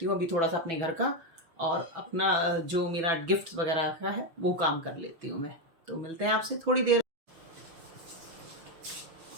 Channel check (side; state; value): left; late; 6.1 ms